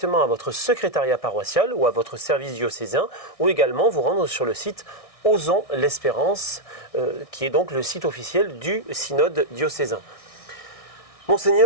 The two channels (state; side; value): late; right; 1.6 ms